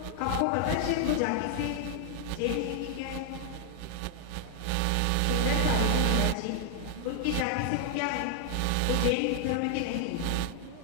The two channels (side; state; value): both; different; correlation 0.00